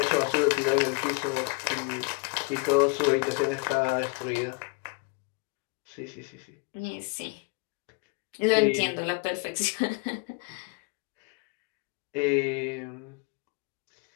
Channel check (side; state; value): right; quieter; 31.3 dB